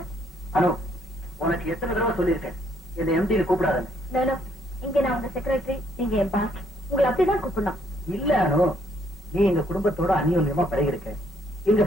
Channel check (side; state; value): both; normal; correlation 0.69